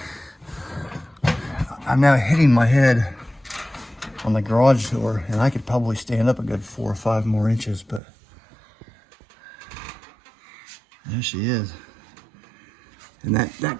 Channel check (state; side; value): drops out; left; at 8.0 s